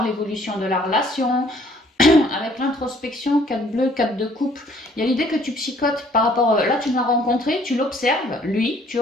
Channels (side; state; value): both; normal; correlation 0.60